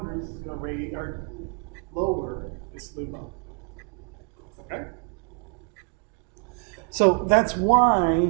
is going to raise or lower this LUMO. Okay? So that's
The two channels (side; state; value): left; quieter; 37.6 dB